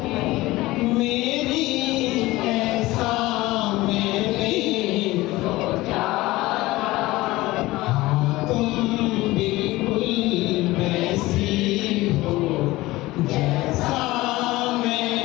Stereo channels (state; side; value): quieter; right; 19.0 dB